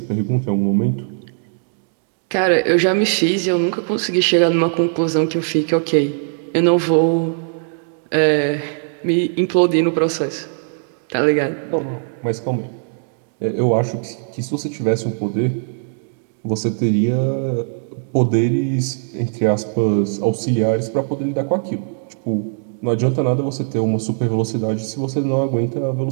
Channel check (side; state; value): left; silent; digital silence